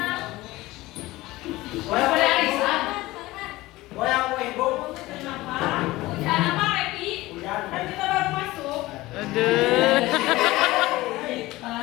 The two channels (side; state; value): right; quieter; 18.7 dB